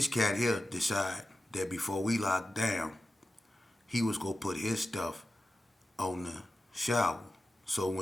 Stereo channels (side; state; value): both; normal; correlation 0.93